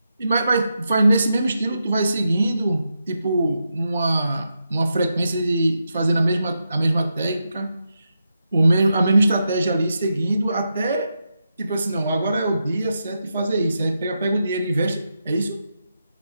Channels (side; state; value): both; inverted; correlation -0.86